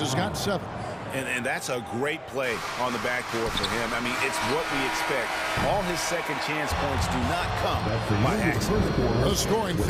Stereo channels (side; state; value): both; identical; correlation 1.00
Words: has got 7. And that's a great play on the backboard for him. I mean, it's what we expect. All his second chance points do not come by accident. The scoring